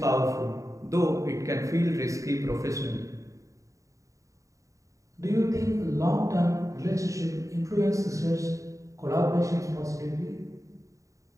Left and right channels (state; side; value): late; left; 0.16 ms